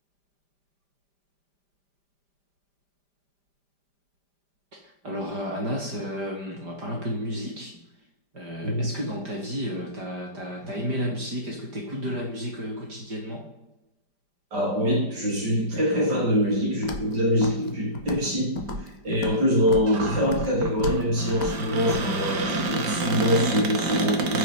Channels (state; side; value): late; left; 5.0 ms